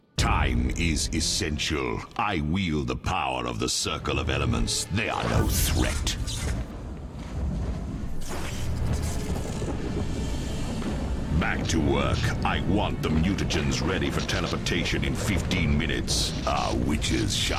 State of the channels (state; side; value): identical; both; correlation 1.00